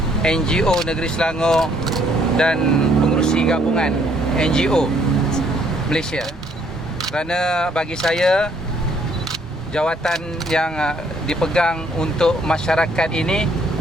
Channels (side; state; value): both; normal; correlation 0.65